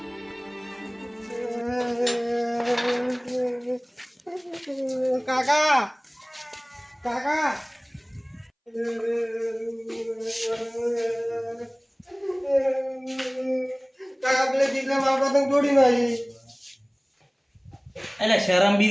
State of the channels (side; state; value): both; identical; correlation 1.00